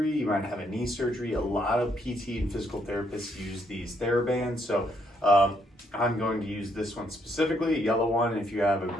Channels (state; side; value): normal; both; correlation 0.73